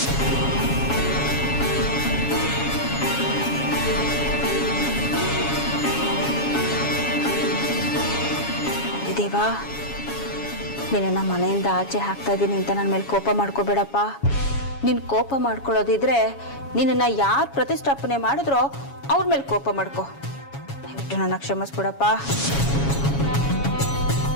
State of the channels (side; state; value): right; late; 7.2 ms